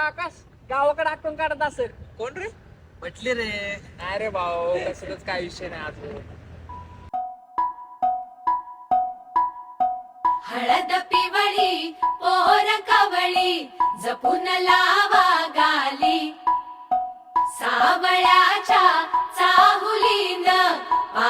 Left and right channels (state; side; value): identical; both; correlation 1.00